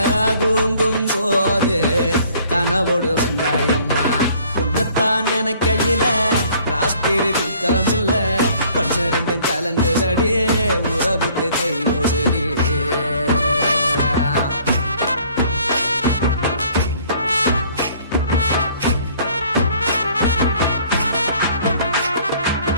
தூங்கும் போது கனவோடு வந்தாயம்மா உன்னத்தான் நினைக்கையில ராத்திரி தூக்கமில்ல கண்ணு ரெண்டும் கலங்குதடி உறவுக்கு கை ஓடுடி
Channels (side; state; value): both; inverted; correlation -0.57